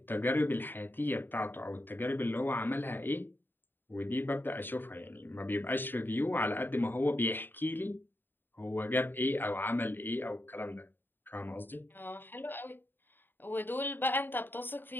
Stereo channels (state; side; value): late; right; 0.095 ms